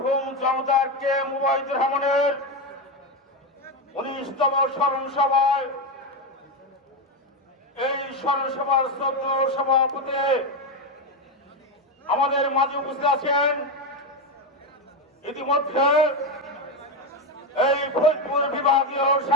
জনতার কে মুবাইদুর রহমানের 19তম স্মরণ সভায় এই স্মরণ সভার শ্রদ্ধেয় সভাপতি আমাদের মাঝে উপস্থিত আছেন। ইতিমধ্যে এই ফরিদপুর বিভাগীয়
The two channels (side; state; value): both; normal; correlation 0.11